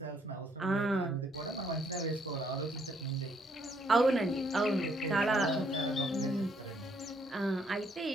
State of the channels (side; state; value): both; normal; correlation 0.69